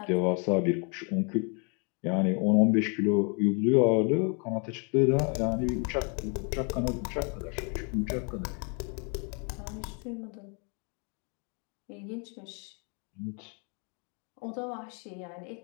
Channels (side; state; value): right; quieter; 37.0 dB